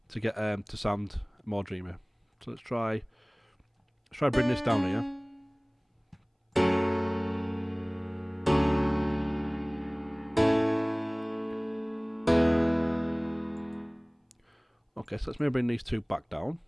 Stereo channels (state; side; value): identical; both; correlation 1.00